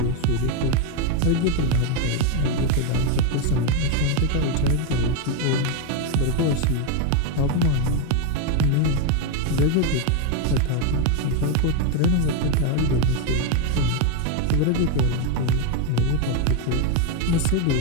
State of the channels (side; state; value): both; different; correlation 0.02